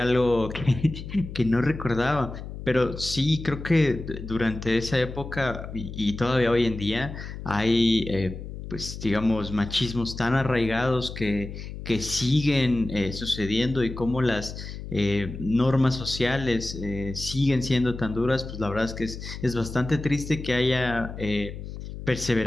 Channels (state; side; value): noise; left; hum, 10 dB below the sound